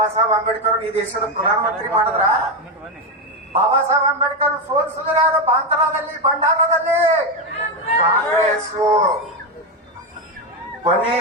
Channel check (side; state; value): both; normal; correlation 0.09